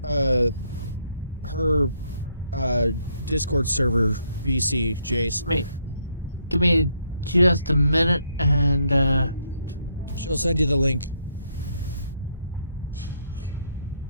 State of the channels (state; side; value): inverted; both; correlation -0.73